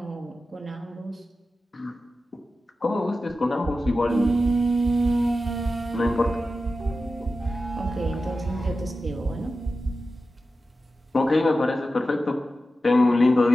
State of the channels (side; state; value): both; normal; correlation 0.93